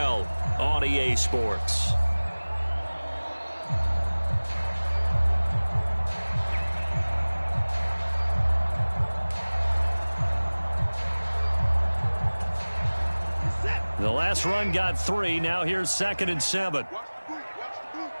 on EA Sports. The last run got 3. Now here's 2nd and 7. Watch the boot.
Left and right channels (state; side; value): inverted; both; correlation -1.00